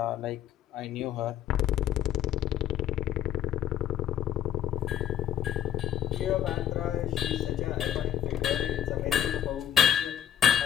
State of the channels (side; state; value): right; quieter; 10.3 dB